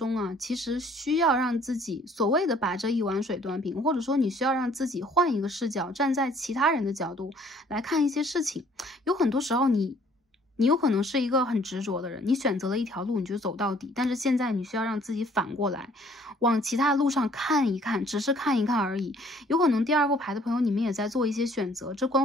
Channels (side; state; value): both; normal; correlation 0.59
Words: 啊，其实需要让自己所谓的把这一碗水端平，或者说你需要让自己换一个视角，站在其他人的角度来看一些事情。有很多时候你你有可能是一个很执着的人，你选择了一条路你就走到底，但是现在你需要让自己反过来，往其他路上看一看，只是看一看而已。有可能第二副牌的朋友，你们也在做一些选择，这